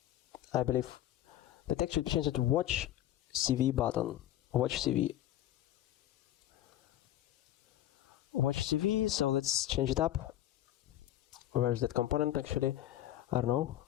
I believe the text should be changed to watch CV button. Watch CV. So let's change it up. Where is that component actually? I don't know.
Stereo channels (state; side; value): quieter; right; 13.0 dB